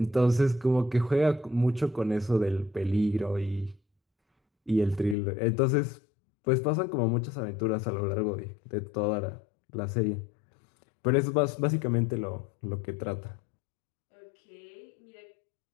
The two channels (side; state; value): right; drops out; at 5.2 s